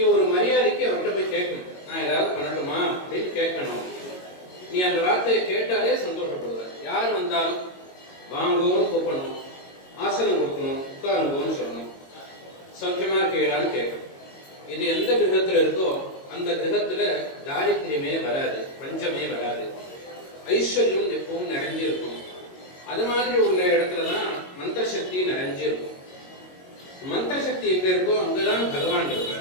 ஒரு மரியாதைக்கு அவர்கிட்ட போய் கேட்கணும். நான் ஏதாவது பண்ணட்டுமா அப்படின்னு கேட்கணும். நீ அந்த வார்த்தையை கேட்டாலே சந்தோஷப்படுவ. யார் வந்தாலும் வாங்குவோன்னு கூப்பிடணும், ஆசனம் கொடுக்கணும், உட்காருங்கோன்னு சொல்லணும், சௌக்கியமா இருக்கீங்களான்னு கேட்கணும். இது எந்த கிரகத்துல இருக்கோ அந்த கிரகத்துல தாரித்திரியமே வராது, பஞ்சமே வராது, ஐஸ்வர்யம் எப்பவும் நிறைஞ்சு இருக்கும். அது மாதிரி உள்ள இடத்துலதான் மந்திர சக்தி நிறைஞ்சு இருக்கும். மந்திர சக்தி எங்க இருக்கோ அங்கதான் பகவான்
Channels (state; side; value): late; right; 22 ms